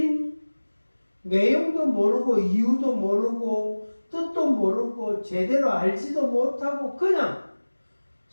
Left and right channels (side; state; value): both; inverted; correlation -1.00